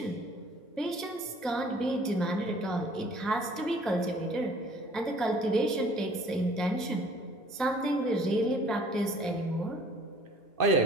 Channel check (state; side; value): normal; both; correlation 0.54